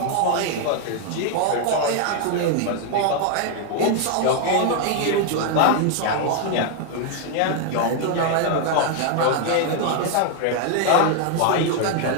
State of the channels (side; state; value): both; different; correlation 0.00